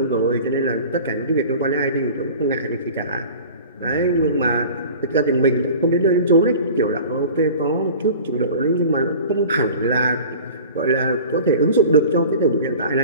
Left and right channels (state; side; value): inverted; both; correlation -0.41